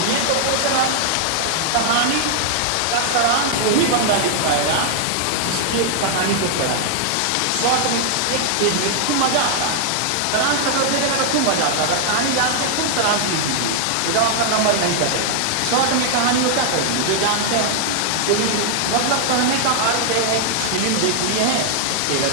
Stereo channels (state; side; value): different; both; correlation -0.01